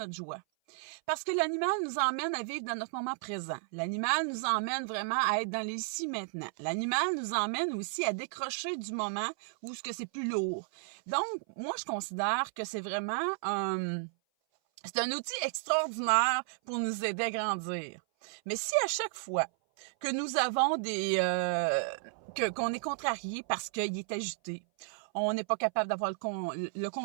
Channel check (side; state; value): left; silent; 56 dB below the other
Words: joie. Parce que l'animal nous emmène à vivre dans notre moment présent. L'animal nous emmène vraiment à être dans l'ici maintenant. L'animal nous emmène aussi à décrocher du moment où ce que c'est plus lourd. Donc, moi, je considère que c'est vraiment c'est un outil extraordinaire pour nous aider à grandir. Mais si à chaque fois que nous avons qu'on est contrarié parce qu'il est agité, on n'est pas capable d'avoir le